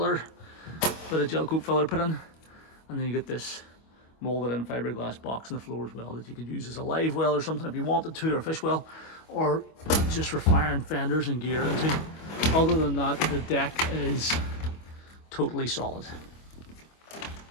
bit of gel coat filler put in. And then you get this molded in fiberglass box on the floor as well that you could use as a live well or something if you wanted to, or a fish well, or just for firing fenders and gear into. Other than that, the deck is totally solid.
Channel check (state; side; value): late; right; 25 ms